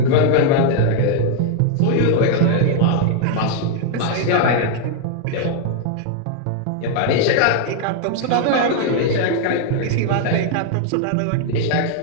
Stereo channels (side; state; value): both; different; correlation 0.00